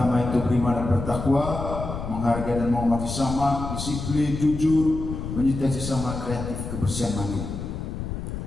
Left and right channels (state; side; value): noise; left; rumble, 6 dB below the sound